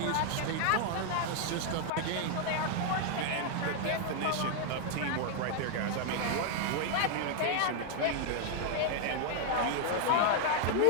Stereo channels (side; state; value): both; different; correlation 0.00